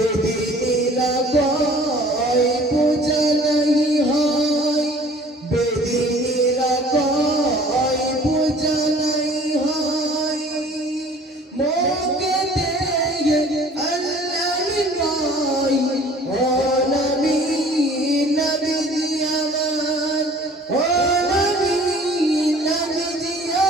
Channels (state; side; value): normal; both; correlation 0.50